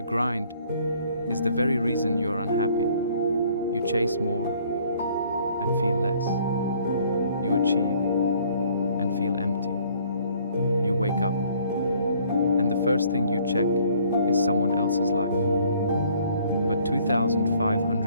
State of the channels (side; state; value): both; inverted; correlation -0.60